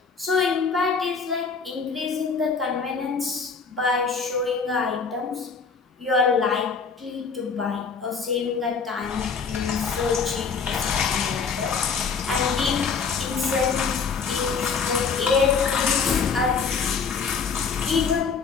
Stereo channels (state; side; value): quieter; right; 5.4 dB